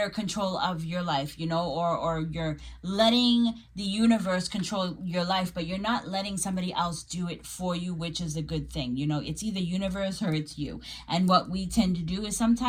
control of your life, or you're letting the universe control your life, but you're not letting somebody else do it for you, which is a good thing. It's either universe or it's you. And what we tend to do is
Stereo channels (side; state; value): both; identical; correlation 1.00